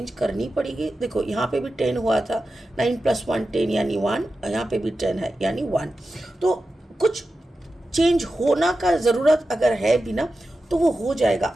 करनी पड़ेगी। देखो यहाँ पे भी 10 हुआ था, 9 + 1 10 यानी 1, यहाँ पे भी 10 है यानी 1। तो कुछ चेंज होना का ज़रूरत अगर है भी ना, तो वो हो जाएगा,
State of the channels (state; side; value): normal; both; correlation 0.92